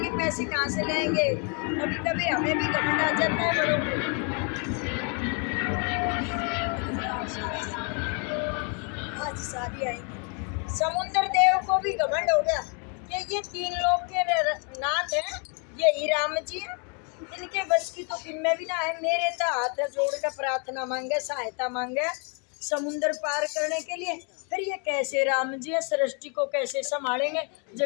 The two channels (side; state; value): right; quieter; 37.0 dB